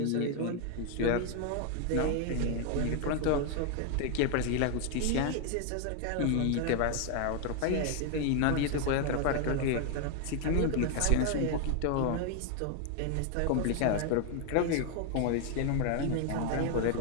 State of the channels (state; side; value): different; both; correlation 0.01